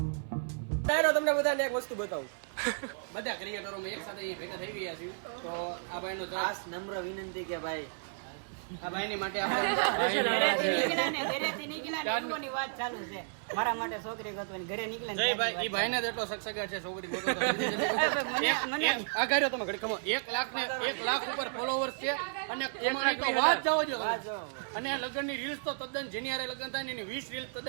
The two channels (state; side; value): silent; left; 56 dB below the other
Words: તમને બધાને એક વસ્તુ બતાવું. બધા ક્રિએટરો એક સાથે ભેગા થઈ ગયા છે. તો આ ભાઈનો ખાસ નમ્ર વિનંતી કે ભાઈ આ ભાઈની માટે આપણે સ્પેશિયલ આવેલા છે. ઘરેથી નીકળ્યા ની વાત ચાલુ છે. મારા માટે છોકરી ગોતવાની ઘરે નીકળ્યા. જય ભાઈ ઈ ભાઈને જ એટલો સગસગાટ છે છોકરી ગોતો તો જલ્દી જલ્દી ગોતો. એક આ ગાડ્યો તમે ઘડી કમો 1 લાખ ઉપર ફોલોવર્સ છે અને એમાંની તો વાત જાવ જો અને લગ્નની રીલ્સ તો તદ્દન જેની હારે લગ્ન થાય ને એની 20 રીલ્સ